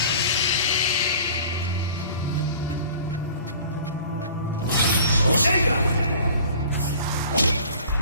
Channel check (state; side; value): inverted; both; correlation -0.46